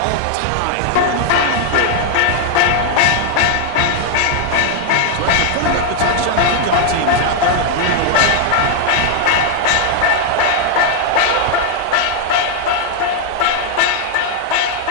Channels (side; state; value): both; different; correlation 0.00